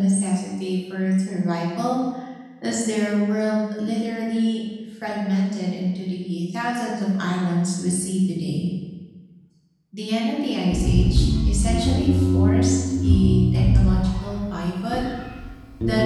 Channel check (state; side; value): identical; both; correlation 1.00